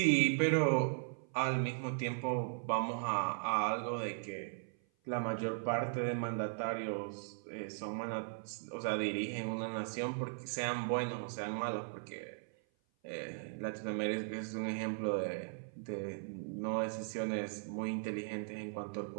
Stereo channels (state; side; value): silent; left; 52 dB below the other